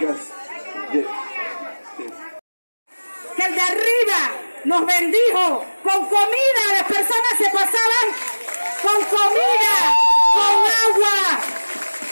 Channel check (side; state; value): both; inverted; correlation -1.00